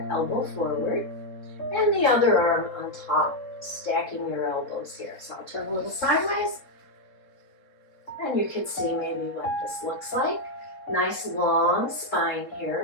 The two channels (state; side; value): late; right; 3.7 ms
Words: elbow forward, and the other arm on top, stacking your elbows here. So I'll turn a little sideways, and you can see maybe what this looks like. Nice long spine